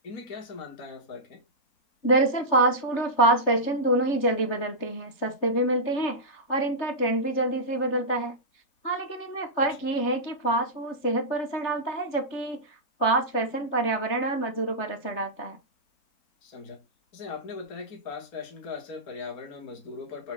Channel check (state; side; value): late; right; 3.4 ms